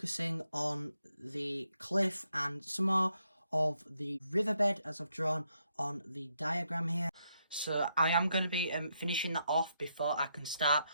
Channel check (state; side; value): inverted; both; correlation -0.78